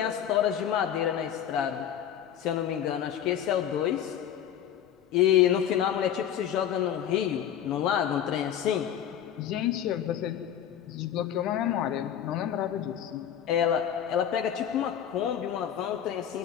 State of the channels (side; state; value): right; quieter; 9.8 dB